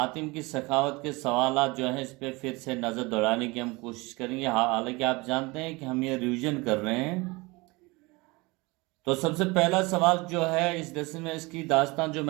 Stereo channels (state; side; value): quieter; left; 24.4 dB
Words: کی سخاوت کے سوالات جو ہیں اس پہ پھر سے نظر دوڑانے کی ہم کوشش کریں گے، حالانکہ آپ جانتے ہیں کہ ہم یہ ریویژن کر رہے ہیں۔ تو سب سے پہلا سوال جو ہے اس لیسن میں، اس کی داستان جو